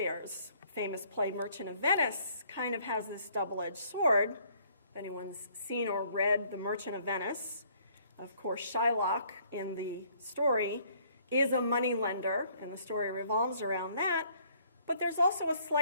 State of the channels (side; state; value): both; inverted; correlation -0.62